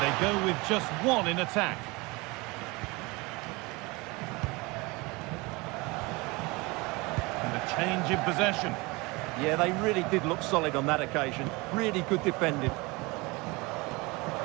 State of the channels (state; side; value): quieter; left; 24.9 dB